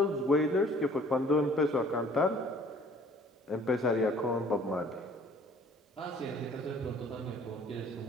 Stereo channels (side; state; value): both; normal; correlation 0.54